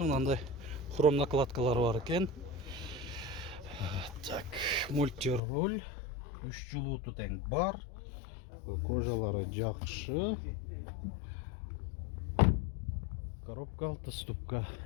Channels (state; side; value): drops out; right; at 5.4 s